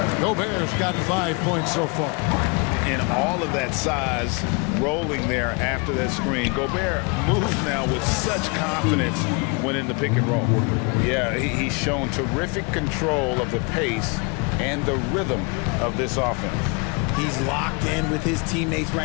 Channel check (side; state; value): right; quieter; 31.5 dB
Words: Gobert's got 5 points so far. And all of that size rolling there after that screen. Gobert moves now with such confidence when in the pick and roll. Yeah, he's shown terrific control of the pace and the rhythm of this offense. He's locked in with his teammates